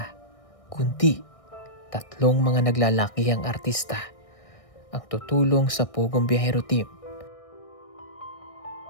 kundi tatlong mga naglalakihang artista ang tutulong sa Pugong Biyahero Team.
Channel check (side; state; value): right; late; 1.6 ms